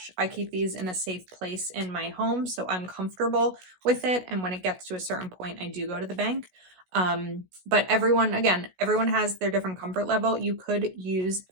I keep these in a safe place in my home, so I'm comfortable with it. And when it gets to a certain point, I do go to the bank. But everyone has their different comfort level. You could use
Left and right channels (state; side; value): late; left; 16 ms